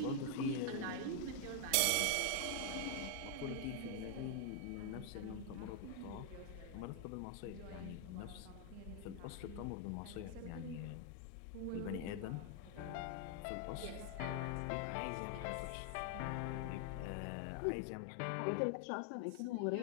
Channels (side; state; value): both; different; correlation 0.00